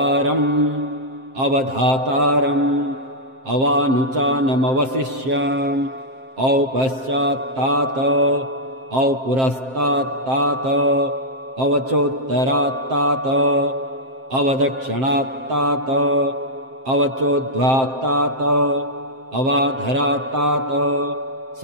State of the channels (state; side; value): late; left; 7.6 ms